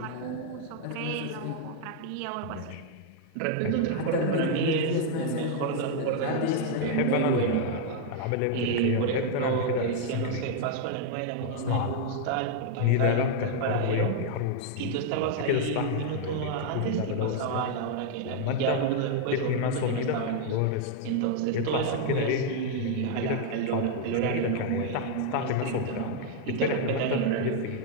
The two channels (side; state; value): both; different; correlation 0.00